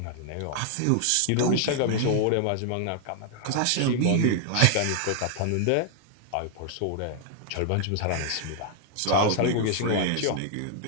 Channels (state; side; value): different; both; correlation 0.00